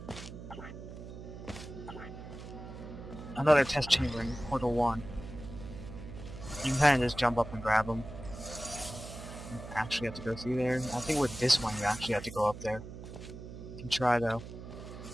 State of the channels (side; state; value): right; noise; hum, 12 dB below the sound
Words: test chamber in Portal 1. You can kind of just jump up and grab them. You actually have to go through there. I think with this one, you actually have to go up there. You can try though.